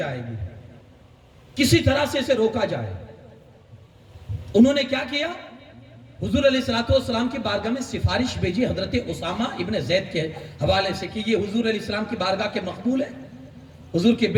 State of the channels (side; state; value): both; identical; correlation 1.00